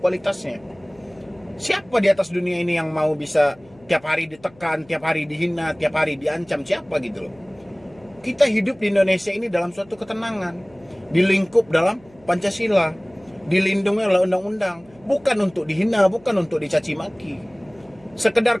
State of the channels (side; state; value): left; noise; hum, 28 dB below the sound